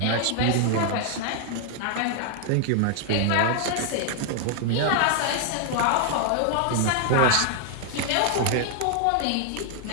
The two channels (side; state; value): both; different; correlation 0.00